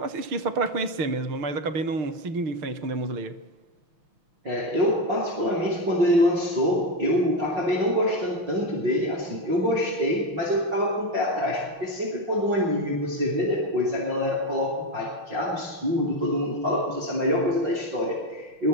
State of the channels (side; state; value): left; late; 6.1 ms